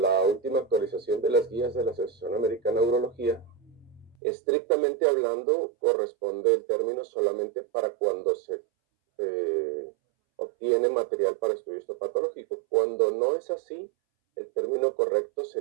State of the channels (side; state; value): left; drops out; at 4.2 s